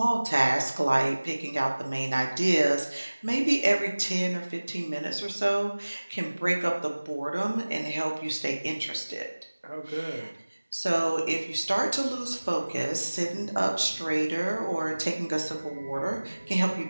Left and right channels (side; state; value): both; inverted; correlation -1.00